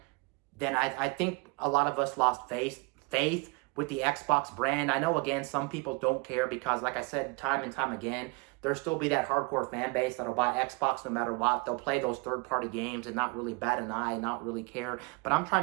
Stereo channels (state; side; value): quieter; left; 29.1 dB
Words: then I think a lot of us lost faith with the Xbox brand. I know, again, some people don't care because, like I said time and time again, there'll still be that hardcore fan base that'll buy Xbox no matter what. They'll play those third-party games and not really bat an eye, not really care. But I'm trying